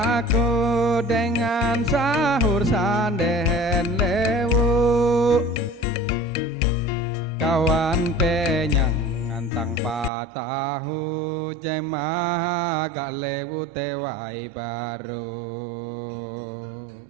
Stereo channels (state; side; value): drops out; left; at 10.1 s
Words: aku dengan sahur sandehen lewu kawan penyang ngantang patahu jemaah galewu tewai baru